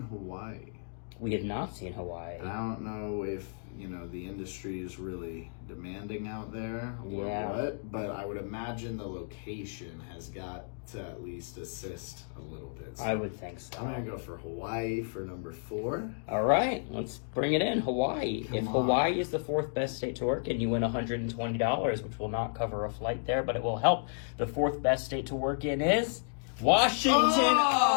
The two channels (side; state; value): right; silent; digital silence